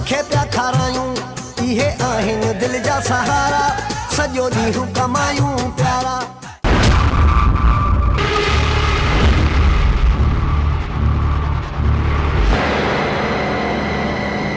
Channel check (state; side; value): identical; both; correlation 1.00